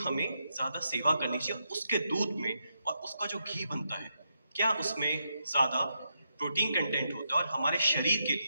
हमें ज्यादा सेवा करनी चाहिए? उसके दूध में और उसका जो घी बनता है, क्या उसमें ज्यादा प्रोटीन कंटेंट होता है और हमारे शरीर के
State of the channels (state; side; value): inverted; both; correlation -0.82